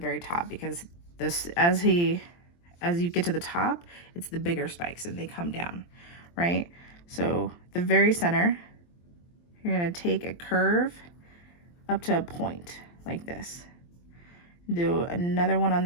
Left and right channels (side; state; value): right; late; 23 ms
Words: top because this, as you get to the top, it's the bigger spikes and they come down, right? So the very center, you're gonna take a curve up to a point like this. Do another one on